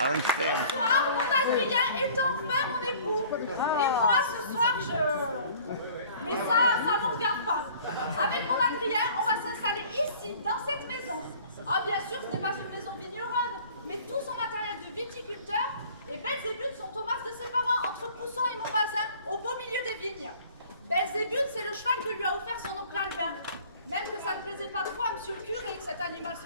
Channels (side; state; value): both; inverted; correlation -0.50